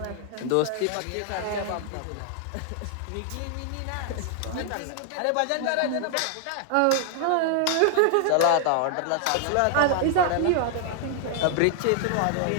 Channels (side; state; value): both; different; correlation -0.01